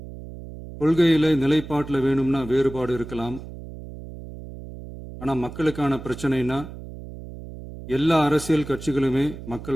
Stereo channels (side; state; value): right; noise; hum, 13 dB below the sound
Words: கொள்கையில நிலைப்பாட்டில் வேணும்னா வேறுபாடு இருக்கலாம். ஆனால் மக்களுக்கான பிரச்சனைனா எல்லா அரசியல் கட்சிகளுமே